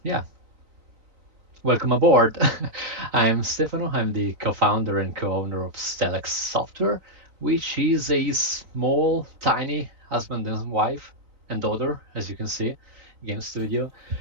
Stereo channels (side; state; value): left; late; 4.0 ms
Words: yeah, welcome aboard. I'm Stefano. I'm the co-founder and co-owner of Stellix Software, which is a small, tiny husband and wife and daughter, as you can see, game studio.